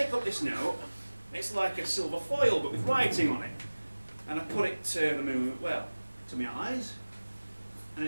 up this note, it's like a silver foil but with writing on it, and I put it to the moon, well, to my eyes, and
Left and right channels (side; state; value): both; inverted; correlation -1.00